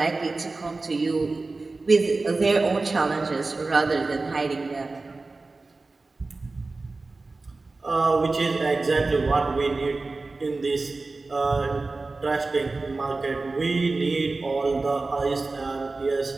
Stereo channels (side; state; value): left; quieter; 3.5 dB